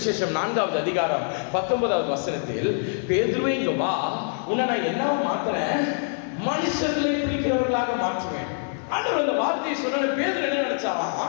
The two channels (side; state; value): right; silent; 56 dB below the other